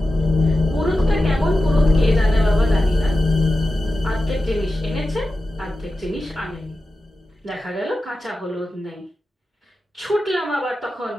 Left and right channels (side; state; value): both; normal; correlation 0.93